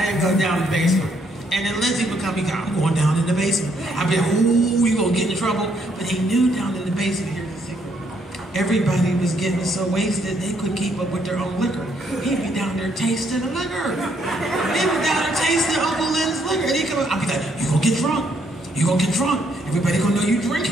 and go down the basement. And then Lenzy would come, I'm going down in the basement. I'd be like, ooh, you gonna get in trouble. But he knew down in the basement, here's the secret. Everybody was getting so wasted, they couldn't keep up with their own liquor. He'd be down there tasting the liquor. He'd be down there tasting Uncle Len's liquor. And he'd come up, I'd be like, you gonna get drunk. You gonna get drunk. Everybody gonna know you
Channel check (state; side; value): normal; both; correlation 0.71